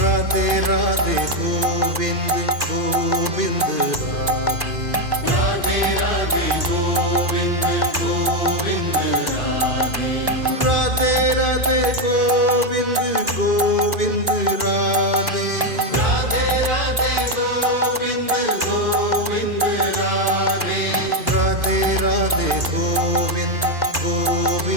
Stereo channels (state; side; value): late; left; 2.5 ms